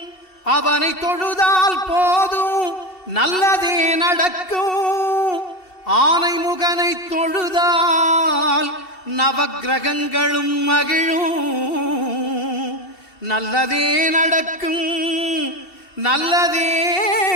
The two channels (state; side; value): late; right; 2.7 ms